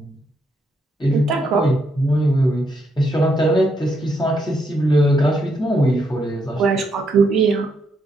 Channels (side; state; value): both; normal; correlation 0.77